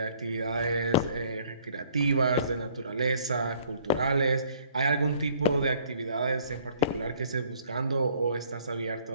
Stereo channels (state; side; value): inverted; both; correlation -0.58